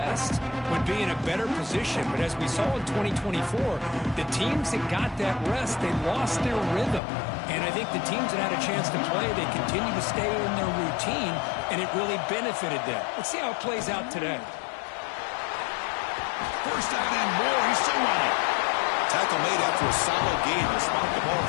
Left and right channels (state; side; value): drops out; right; at 7.0 s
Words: would be in a better position. But as we saw in 2024, the teams that got that rest, they lost their rhythm. And I think the teams that had a chance to play, they continue to stay in their routine, and it really benefited them. Let's see how it plays out today. First down and more. He's still running. Tackle made after a solid gain. They spot the ball